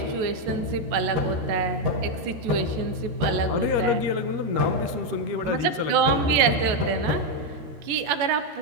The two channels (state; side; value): late; left; 14 ms